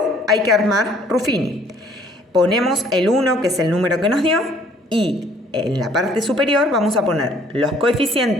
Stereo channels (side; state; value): both; normal; correlation 0.58